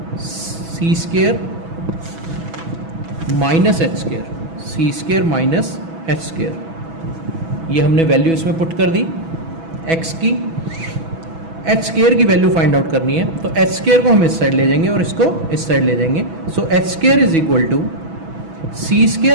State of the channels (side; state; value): left; late; 6.1 ms